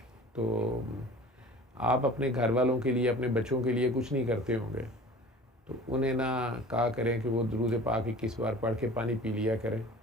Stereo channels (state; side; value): normal; both; correlation 0.43